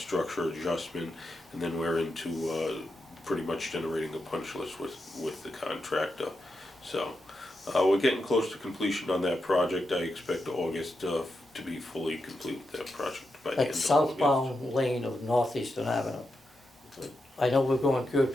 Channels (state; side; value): normal; both; correlation 0.86